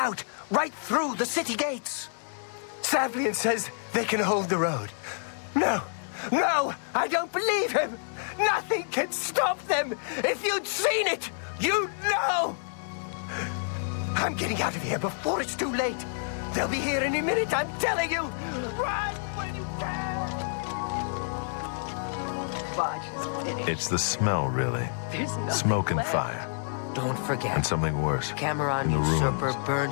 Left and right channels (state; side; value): silent; right; digital silence